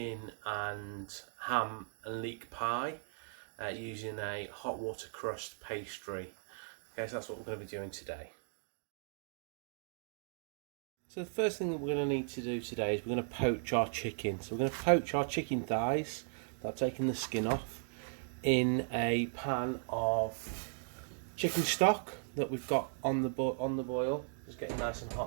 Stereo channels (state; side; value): silent; left; digital silence